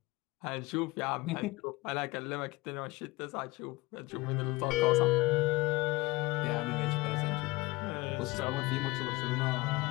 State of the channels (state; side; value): quieter; right; 21.6 dB